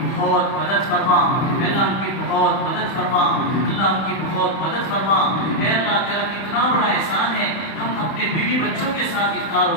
بہت مدد فرما. اے اللہ ان کی بہت مدد فرما. اللہ ان کی بہت مدد فرما. اے اللہ تیرا کتنا بڑا احسان ہے ہم اپنے بیوی بچوں کے ساتھ افطار و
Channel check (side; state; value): right; late; 31 ms